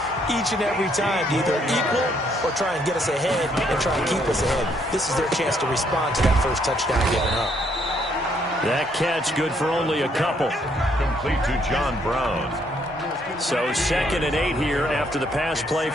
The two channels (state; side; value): normal; both; correlation 0.70